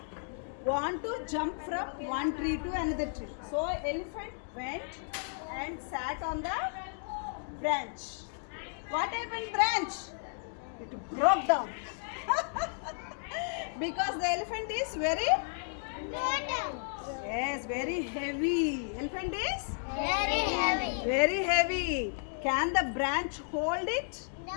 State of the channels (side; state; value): right; silent; digital silence